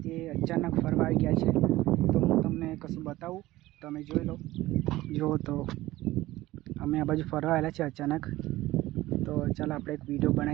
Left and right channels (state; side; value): quieter; left; 17.2 dB